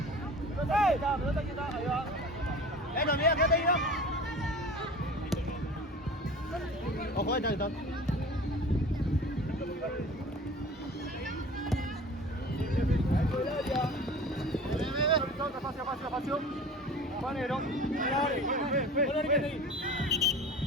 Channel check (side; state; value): both; normal; correlation 0.39